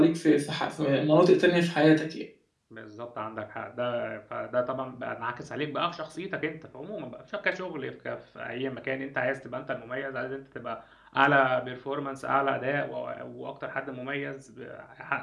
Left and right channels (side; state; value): both; identical; correlation 1.00